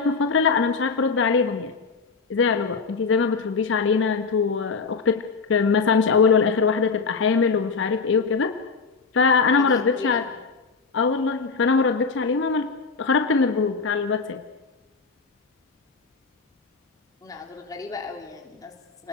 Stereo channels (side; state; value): right; quieter; 4.8 dB